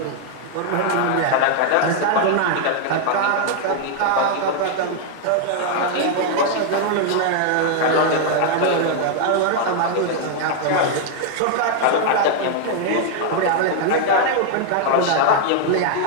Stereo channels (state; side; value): different; both; correlation 0.00